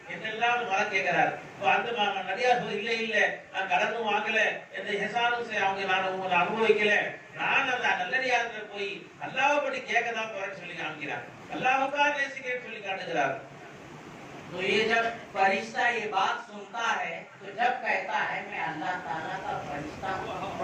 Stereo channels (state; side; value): identical; both; correlation 1.00